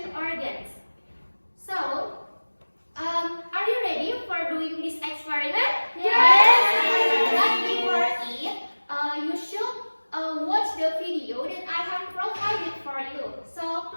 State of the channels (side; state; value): both; inverted; correlation -1.00